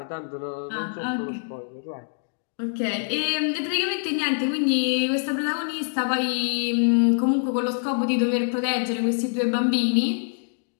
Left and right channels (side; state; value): right; silent; 59 dB below the other